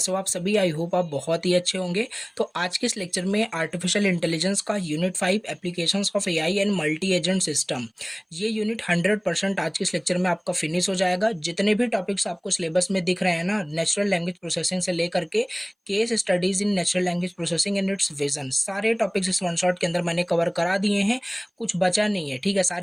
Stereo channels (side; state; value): both; identical; correlation 1.00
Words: हो आप सभी। आई होप आप बहुत ही अच्छे होंगे। तो आज के इस लेक्चर में आर्टिफिशियल इंटेलिजेंस का unit 5 applications of AI and multi agent system, ये यूनिट 100% आज के इस लेक्चर में आपका फिनिश हो जाएगा। जितने भी टॉपिक्स आपको सिलेबस में दिख रहे हैं ना, नेचुरल लैंग्वेज प्रोसेसिंग से लेकर के case studies in natural language processing and it's vision, सारे टॉपिक्स इस वन शॉट के अंदर मैंने कवर करा दिए हैं। कुछ बचा नहीं है, ठीक है।